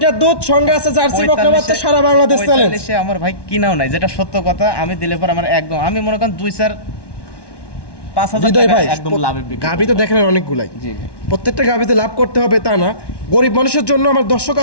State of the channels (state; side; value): late; right; 1.1 ms